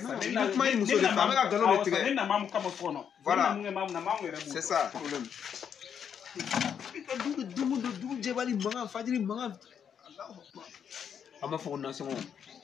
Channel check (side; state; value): right; quieter; 7.9 dB